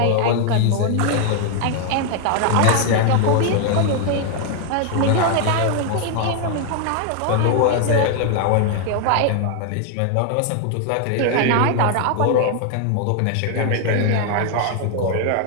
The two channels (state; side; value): different; both; correlation 0.00